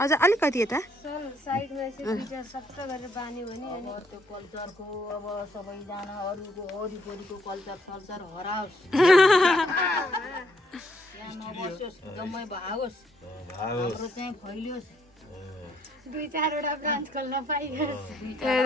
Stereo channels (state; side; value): normal; both; correlation 0.70